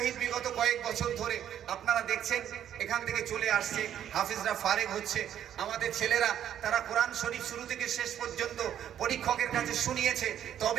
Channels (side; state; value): left; quieter; 10.2 dB